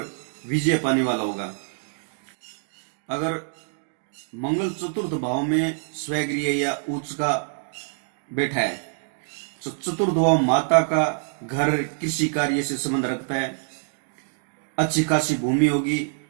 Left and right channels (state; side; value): silent; left; digital silence